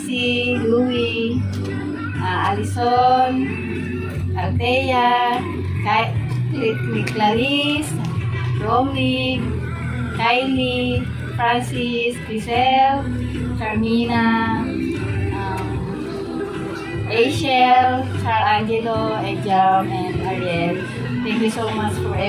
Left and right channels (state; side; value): identical; both; correlation 1.00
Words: Louie, Alison, Althea, Clarice, Romney, Kylie, Francis, Grisel, Carmina, Rachel, Angelo, Ejam, and Ariel. Thank you so much for